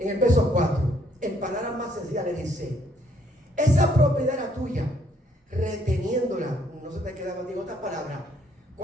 el verso 4, en palabras más sencillas le dice, esa propiedad era tuya, reteniéndola, no se te queda contigo otras palabras,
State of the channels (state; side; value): normal; both; correlation 0.68